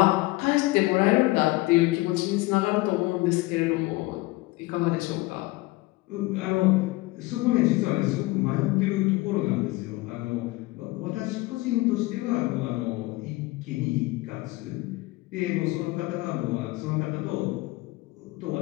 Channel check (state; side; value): quieter; right; 20.9 dB